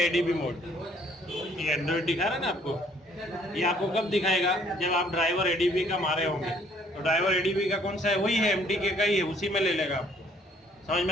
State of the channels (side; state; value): both; normal; correlation 0.62